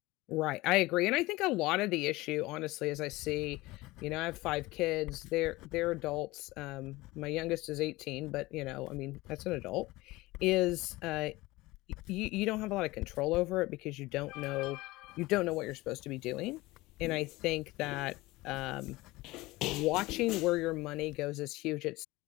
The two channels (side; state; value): right; quieter; 20.2 dB